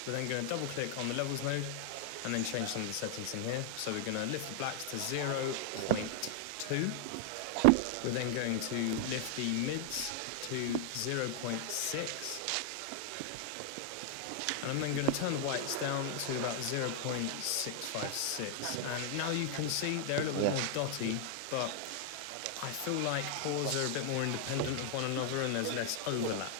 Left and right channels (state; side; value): different; both; correlation 0.00